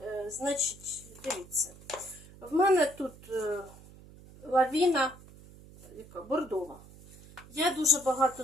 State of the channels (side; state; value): right; noise; hum, 21 dB below the sound